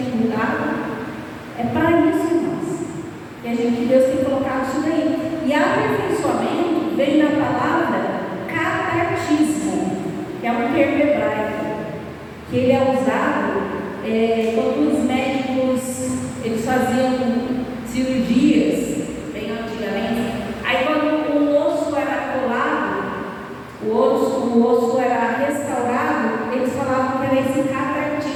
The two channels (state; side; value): identical; both; correlation 1.00